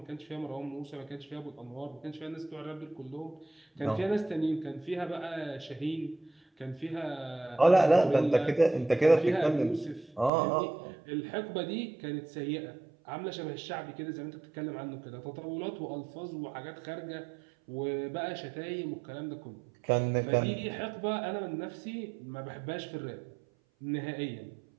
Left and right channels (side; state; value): left; drops out; at 10.3 s